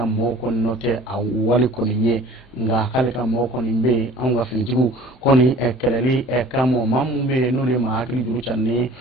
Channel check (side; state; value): both; normal; correlation 0.47